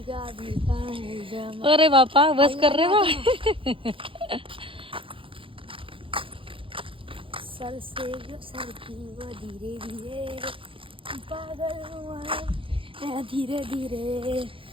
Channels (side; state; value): left; late; 0.25 ms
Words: भीगा. अरे बापा बस कर रे बा. सर से सर की वो धीरे धीरे पागल हुआ धीरे धीरे